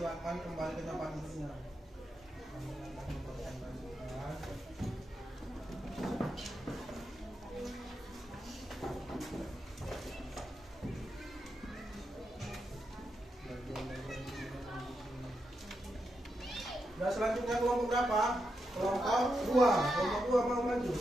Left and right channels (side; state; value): both; normal; correlation 0.85